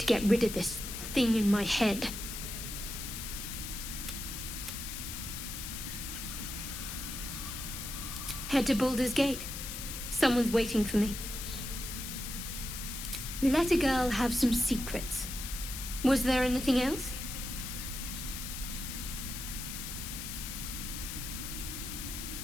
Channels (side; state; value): left; noise; hiss, 7 dB below the sound